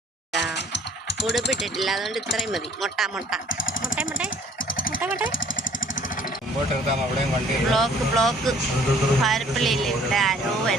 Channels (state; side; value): normal; both; correlation 0.57